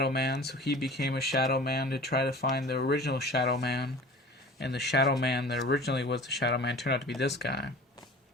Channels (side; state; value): both; normal; correlation 0.42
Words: Man, so he became a Shadow Man to try to find the original Shadow Man. And the Shadow Man that originally was the Shadow Man turned out to be this guy.